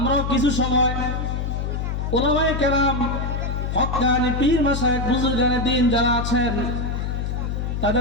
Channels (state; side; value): noise; left; hum, 2 dB below the sound